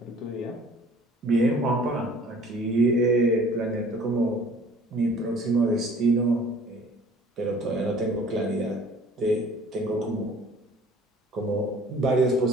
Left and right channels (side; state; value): both; normal; correlation 0.51